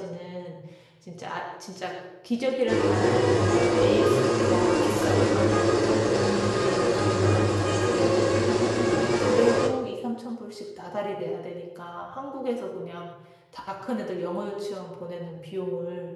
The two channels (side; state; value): both; identical; correlation 1.00